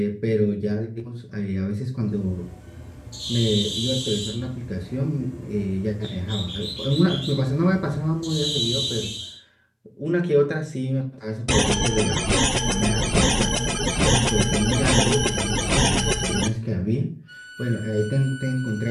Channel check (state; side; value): identical; both; correlation 1.00